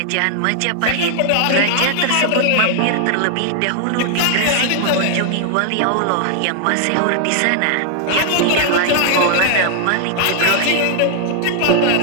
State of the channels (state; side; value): different; both; correlation 0.00